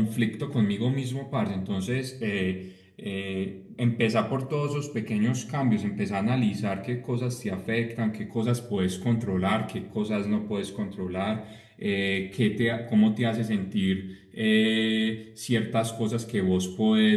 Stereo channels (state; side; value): identical; both; correlation 1.00